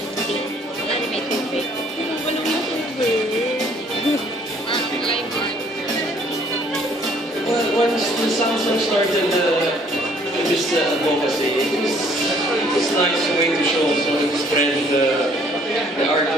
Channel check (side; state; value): both; normal; correlation 0.61